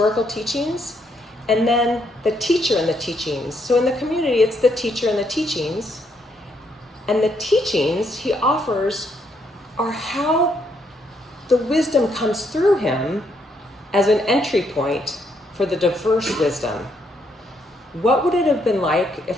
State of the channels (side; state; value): both; normal; correlation 0.74